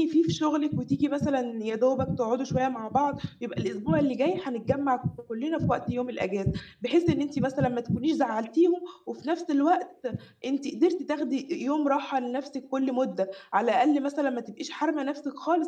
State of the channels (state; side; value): identical; both; correlation 1.00